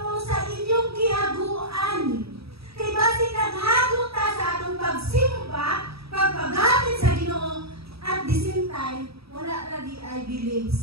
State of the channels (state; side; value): late; left; 0.77 ms